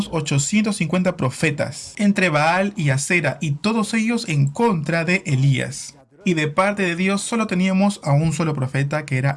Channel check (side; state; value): both; identical; correlation 1.00